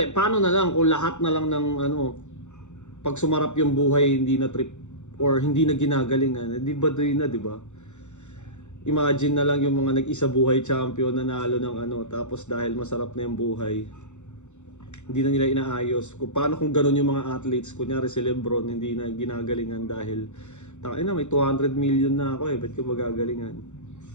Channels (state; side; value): late; right; 0.84 ms